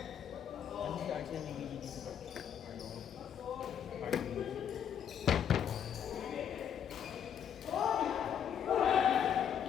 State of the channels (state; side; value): quieter; right; 8.7 dB